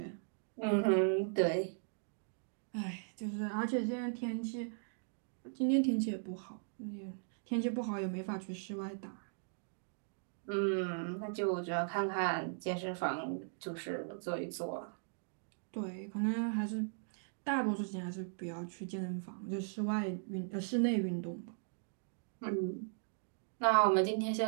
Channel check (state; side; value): silent; left; digital silence